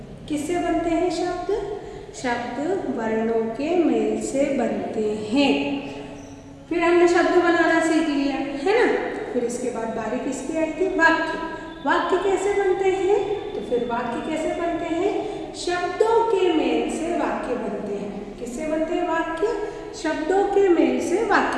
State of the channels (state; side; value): identical; both; correlation 1.00